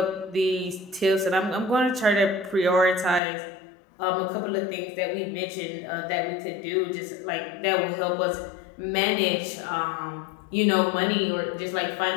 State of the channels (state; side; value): drops out; right; at 3.2 s